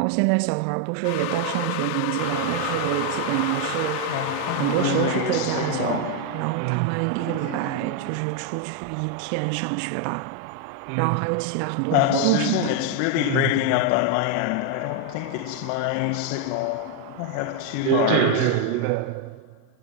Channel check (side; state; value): both; different; correlation 0.01